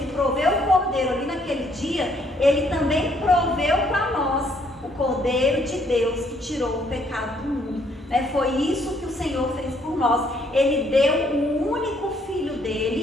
proveu o cordeiro ali naquele dia, ele também proveu para nós o cordeiro de Deus que tirou o pecado do mundo. Foi isso que o Senhor fez por nós. Ele deu o único filho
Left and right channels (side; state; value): both; normal; correlation 0.67